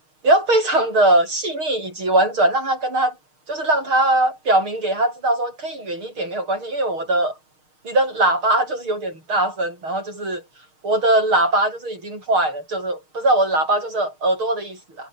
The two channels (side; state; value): left; late; 6.5 ms